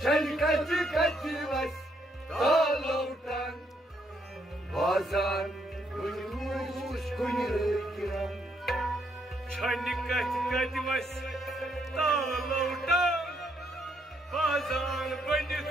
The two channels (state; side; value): normal; both; correlation 0.74